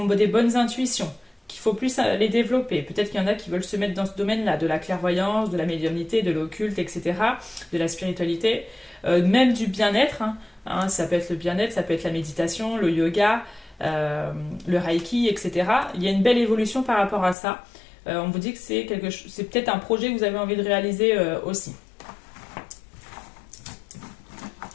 des bonnes intuitions, qu'il faut plus les développer. Peut-être qu'il y en a qui veulent se mettre dans ce domaine-là, de la clairvoyance, de la médiumnité, de l'occulte, etc., de la spiritualité, même du bien-être, hein. Hein, ça peut être le bien-être, ça peut être la méditation, le yoga, le reiki, etc. Il y a une belle évolution par rapport à ça. On vous dit que c'est peut-être un projet que vous avez envie de réaliser aussi.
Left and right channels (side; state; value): right; drops out; at 17.4 s